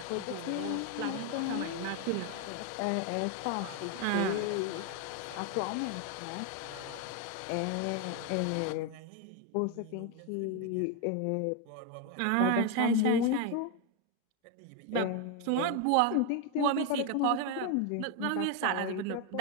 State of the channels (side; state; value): both; different; correlation 0.01